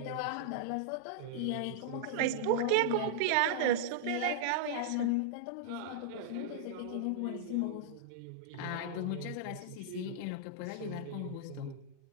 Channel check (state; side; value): different; both; correlation -0.02